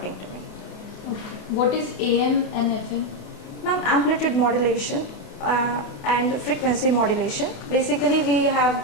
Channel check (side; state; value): right; late; 28 ms